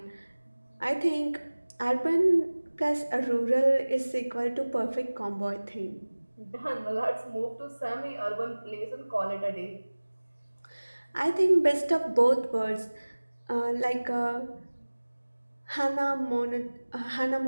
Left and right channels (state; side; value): inverted; both; correlation -1.00